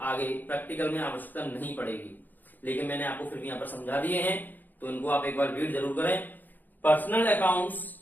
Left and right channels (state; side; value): late; right; 0.086 ms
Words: आगे प्रैक्टिकल में आवश्यकता नहीं पड़ेगी, लेकिन मैंने आपको फिर भी यहां पर समझा दिए हैं, तो इनको आप एक बार रीड जरूर करें। पर्सनल अकाउंट्स